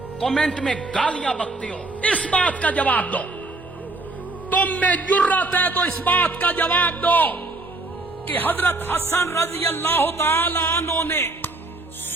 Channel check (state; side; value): quieter; left; 3.1 dB